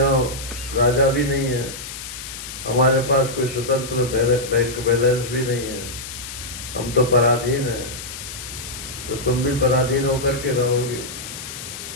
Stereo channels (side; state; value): left; noise; hiss, 10 dB below the sound